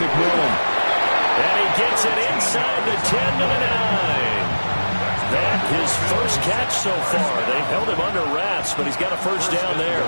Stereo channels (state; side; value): inverted; both; correlation -1.00